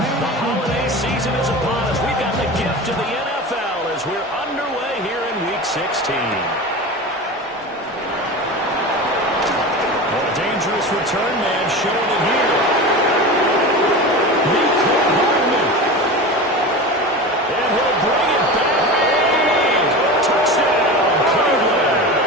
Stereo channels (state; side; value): normal; both; correlation 0.29